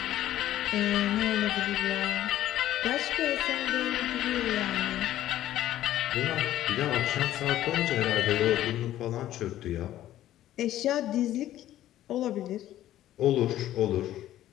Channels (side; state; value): right; quieter; 13.2 dB